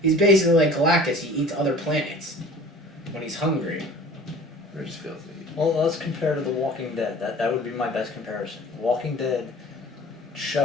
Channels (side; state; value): both; normal; correlation 0.45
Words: He's basically like Galactus. He eats other planets when he's hungry. Or just feels Well, let's compare to The Walking Dead. That would be my best comparison. The Walking Dead